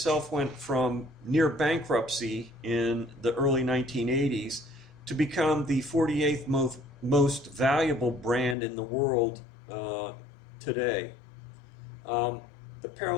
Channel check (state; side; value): drops out; right; at 8.6 s